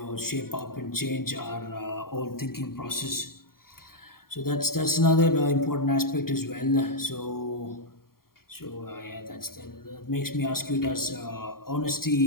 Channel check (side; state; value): right; late; 0.93 ms